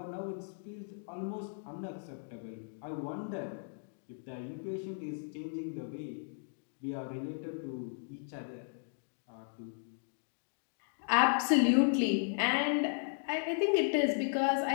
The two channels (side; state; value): right; silent; digital silence